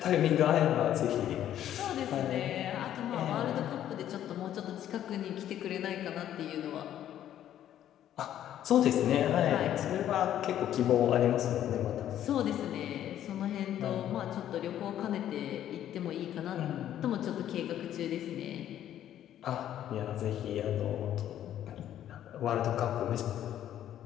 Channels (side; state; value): right; quieter; 11.3 dB